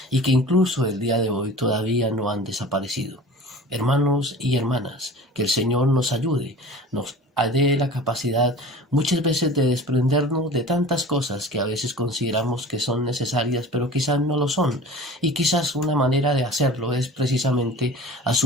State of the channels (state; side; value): normal; both; correlation 0.40